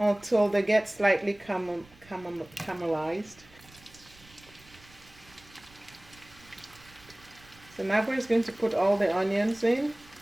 they get slightly caramelized. So Nagwa is going to put all the onions in.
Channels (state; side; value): noise; right; rumble, 25 dB below the sound